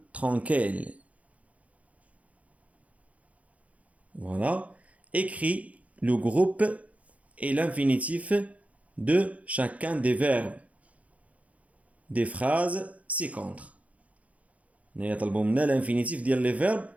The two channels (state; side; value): late; left; 0.068 ms